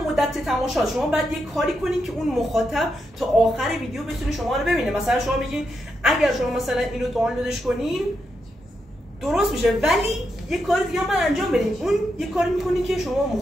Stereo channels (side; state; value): both; normal; correlation 0.83